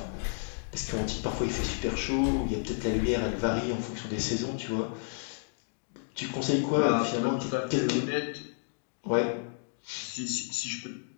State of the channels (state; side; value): silent; right; digital silence